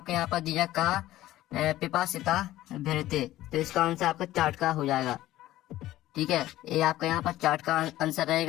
यहाँ पर दिया कहा पिपासिता भरते, तो इसका आंसर आपका चार्ट का हो जाएगा, ठीक है। ये आपका यहाँ पर चार्ट का आंसर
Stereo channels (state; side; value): quieter; right; 15.1 dB